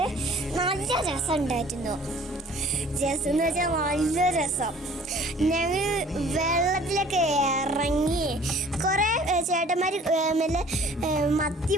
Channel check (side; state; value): both; normal; correlation 0.52